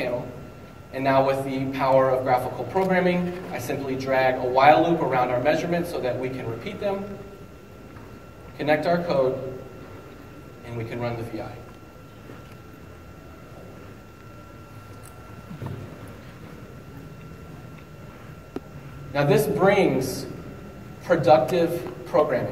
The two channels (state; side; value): identical; both; correlation 1.00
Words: And now with the power of graphical programming, I simply drag a while loop around our measurements so that we can repeat them, connect our code, and we can run the VI. Now this brings productive